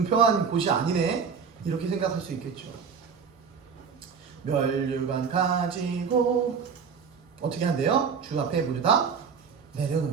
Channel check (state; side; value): quieter; left; 6.2 dB